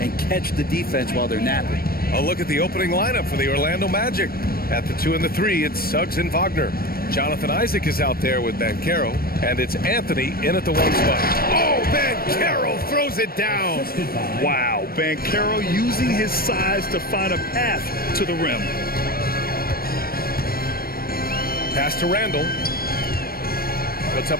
catch the defense while they're napping. A look at the opening lineup for the Orlando Magic. At the 2 and the 3, it's Suggs and Wagner. Jonathan Isaac is out there with Banchero, and it's Anthony in at the 1 spot. Oh, Banchero throws it down. Wow, Banchero using his size to find a path to the rim. Pass to Randall. Puts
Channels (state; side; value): late; right; 0.44 ms